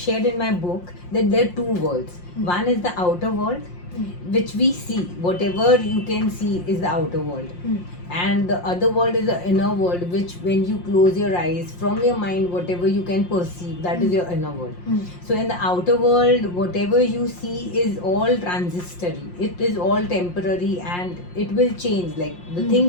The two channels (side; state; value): right; late; 5.6 ms